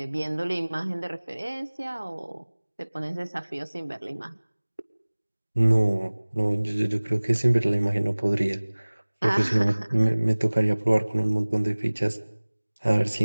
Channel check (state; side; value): inverted; both; correlation -1.00